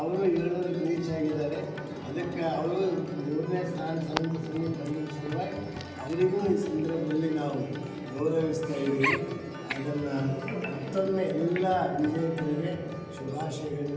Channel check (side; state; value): both; identical; correlation 1.00